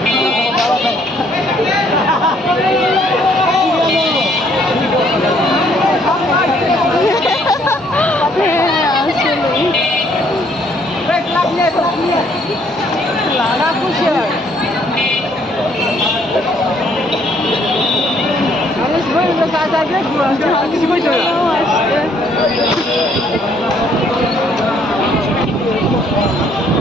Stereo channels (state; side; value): normal; both; correlation 0.65